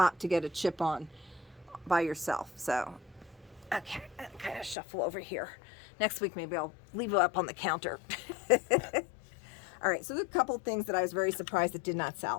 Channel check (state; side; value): drops out; right; at 4.8 s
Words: to get a chip on by yourself. So, okay, I'll kind of shuffle over here. Next week, maybe I'll leave it up on the counter. All right, so there's a couple things that I was very surprised that did not